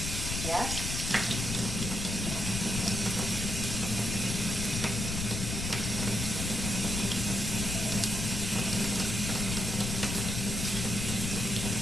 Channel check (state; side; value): noise; left; rumble, 3 dB below the sound